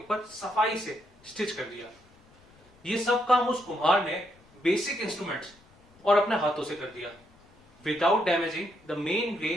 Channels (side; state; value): left; noise; rumble, 29 dB below the sound